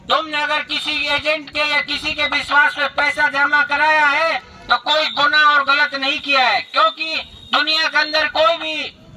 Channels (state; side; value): identical; both; correlation 1.00